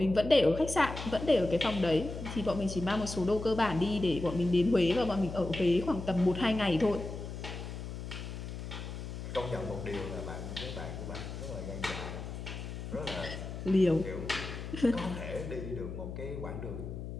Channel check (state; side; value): noise; left; hum, 8 dB below the sound